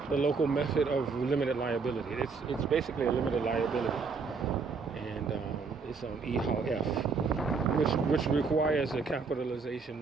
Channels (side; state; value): left; quieter; 4.9 dB